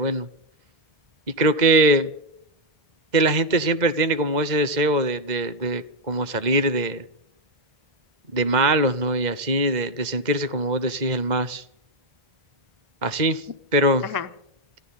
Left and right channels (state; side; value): late; left; 2.0 ms